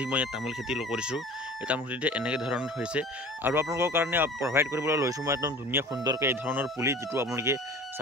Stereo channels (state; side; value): normal; both; correlation 0.41